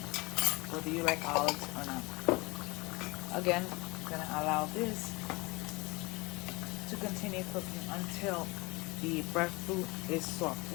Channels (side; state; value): right; quieter; 24.9 dB